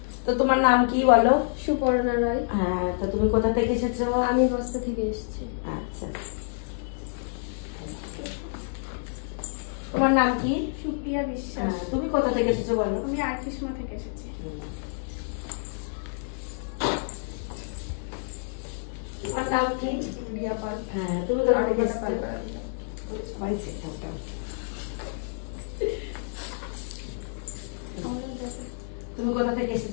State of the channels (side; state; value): right; silent; digital silence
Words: তো তোমার নাম কি বলো? সুপর্ণা রায়। হ্যাঁ, তো তুমি কোথা থেকে এসেছো? আমি বস্তা থেকে এসেছি। আচ্ছা, তোমার নাম কি? সুপ্রিয়া বিশ্বাস। তুমি কোথা থেকে এসেছো বলো? আমি আর্টিসমা থেকে এসেছি। তোমার নাম কি? রিয়া পাল। হ্যাঁ, তুমি কোথা থেকে এসেছো? সবাই চেষ্টা তুমি কোথা থেকে